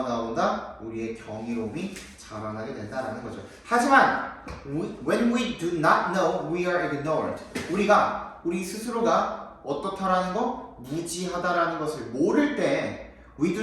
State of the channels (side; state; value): both; identical; correlation 1.00